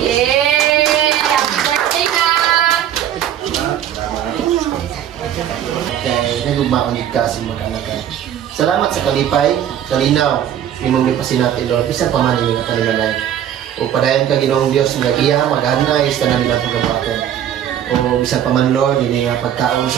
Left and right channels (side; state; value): left; quieter; 10.4 dB